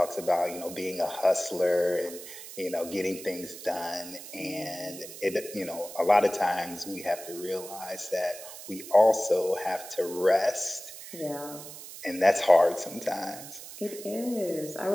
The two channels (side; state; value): right; noise; hiss, 13 dB below the sound